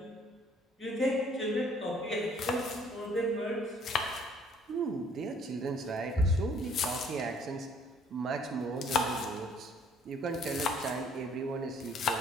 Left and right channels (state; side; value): normal; both; correlation 0.60